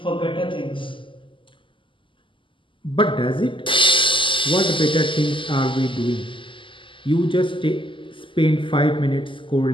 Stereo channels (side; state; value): right; late; 0.25 ms